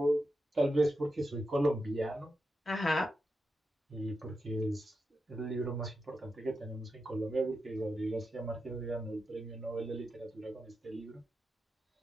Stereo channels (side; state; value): both; normal; correlation 0.88